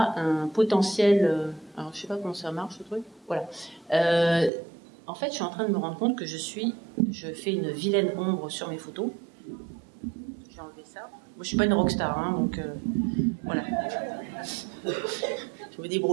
un potentiel. Alors, je sais pas comment ça marche ce truc. Voilà. En fait, je suis en train de me rendre compte que je fais une vilaine ombre sur mes photos. Je vais enlever ça. Moi, je suis pas une rockstar, hein, donc voilà. Je me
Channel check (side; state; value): left; drops out; at 4.5 s